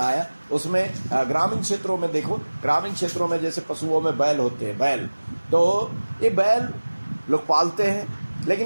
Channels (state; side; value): inverted; both; correlation -1.00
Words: उसमें ग्रामीण क्षेत्रों में देखो, ग्रामीण क्षेत्रों में जैसे पशुओं में बैल होते हैं, बैल, तो ये बैल लोग पालते हैं,